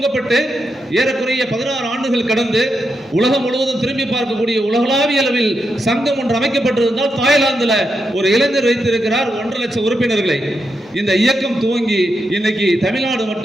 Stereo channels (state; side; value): normal; both; correlation 0.84